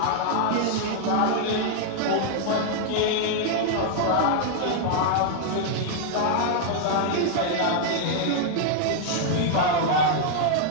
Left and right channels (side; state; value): both; different; correlation -0.01